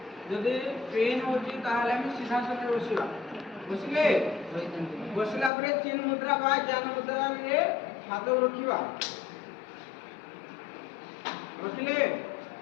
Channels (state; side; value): drops out; right; at 5.5 s